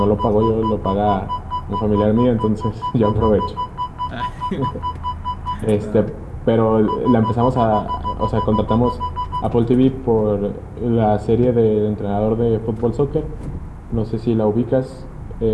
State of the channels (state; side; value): identical; both; correlation 1.00